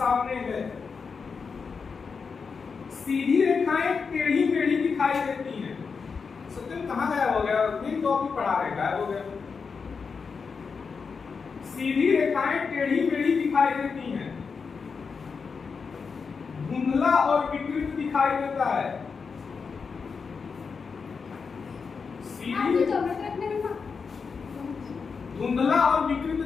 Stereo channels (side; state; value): right; quieter; 5.4 dB